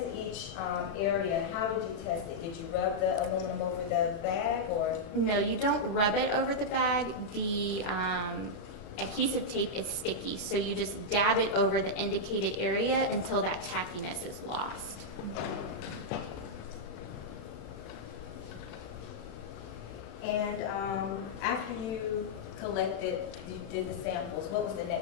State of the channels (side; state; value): right; late; 36 ms